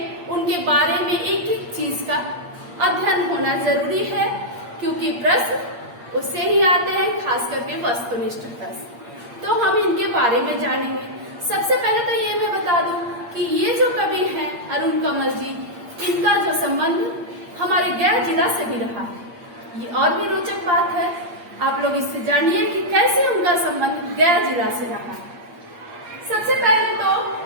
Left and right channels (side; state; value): left; late; 8.6 ms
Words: उनके बारे में एक एक चीज का अध्ययन होना जरूरी है, क्योंकि प्रश्न उससे ही आते हैं, खास करके वस्तुनिष्ठता से। तो हम इनके बारे में जानेंगे। सबसे पहले तो ये मैं बता दूं कि ये जो कवि हैं अरुण कमल जी, इनका जो संबंध हमारे गया जिला से भी रहा है। ये और भी रोचक बात है, आप लोग इससे जानिए कि कैसे उनका संबंध गया जिला से रहा है। सबसे पहले